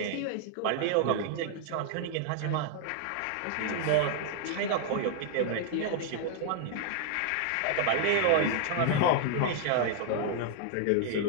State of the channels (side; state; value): both; different; correlation 0.00